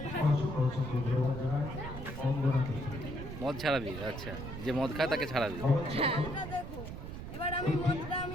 মদ ছাড়াবি আচ্ছা যে মদ খায় তাকে ছাড়াবি হ্যাঁ এটা দেখো এবার আমি মদটা আমি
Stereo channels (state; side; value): noise; right; rumble, 8 dB below the sound